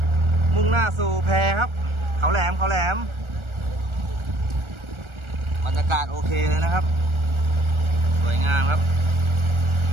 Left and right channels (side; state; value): left; late; 1.4 ms